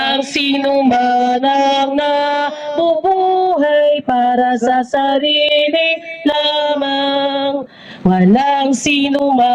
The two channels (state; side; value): identical; both; correlation 1.00